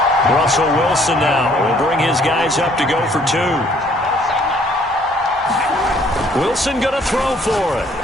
Russell Wilson now will bring his guys up to go for 2. Wilson going to throw for it.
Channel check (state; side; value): normal; both; correlation 0.61